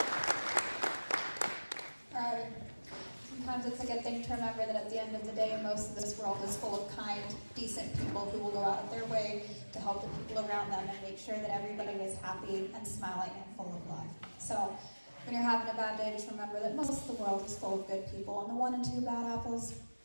All right. Sometimes it's a good thing to remember that at the end of the day, most of this world is full of kind, decent people who will go out of their way to help the people around them and make sure that everybody is happy and smiling and full of love. So when you're having a bad day, just remember that most of the world is full of good people, and the 1 and 2 bad apples,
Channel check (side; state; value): both; inverted; correlation -1.00